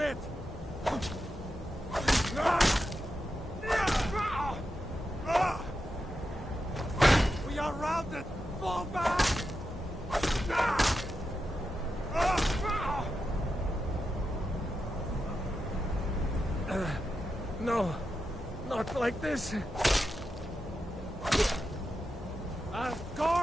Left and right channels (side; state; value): both; normal; correlation 0.88